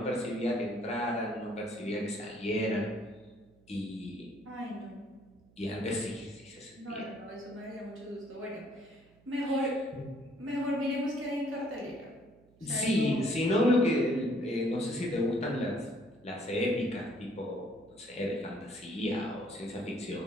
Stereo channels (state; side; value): noise; right; hum, 29 dB below the sound